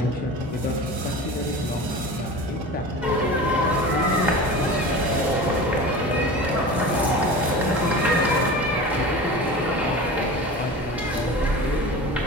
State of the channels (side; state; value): both; normal; correlation 0.33